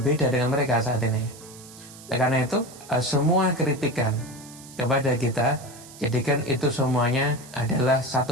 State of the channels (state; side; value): noise; right; hiss, 19 dB below the sound